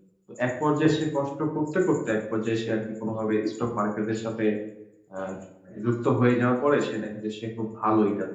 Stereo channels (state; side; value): identical; both; correlation 1.00